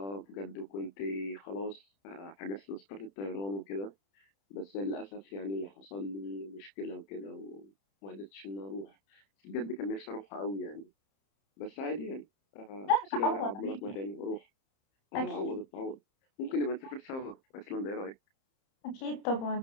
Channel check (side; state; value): right; late; 30 ms